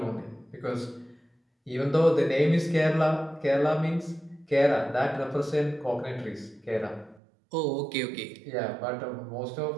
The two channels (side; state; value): left; drops out; at 7.2 s